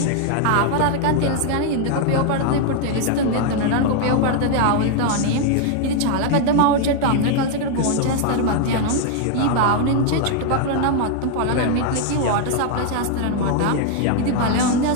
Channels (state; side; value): different; both; correlation 0.00